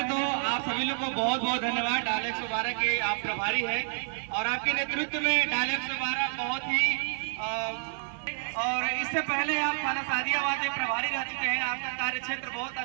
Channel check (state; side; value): silent; left; digital silence